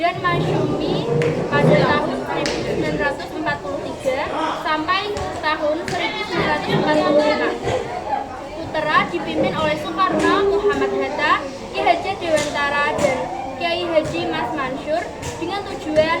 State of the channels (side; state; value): both; identical; correlation 1.00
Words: Matsumi pada tahun 1943 sampai tahun 1945. Utara dipimpin oleh Soekarno, Muhammad Hatta, Ki Hajar Dewantara, dan Kiai Haji Mas Mansur dengan tujuan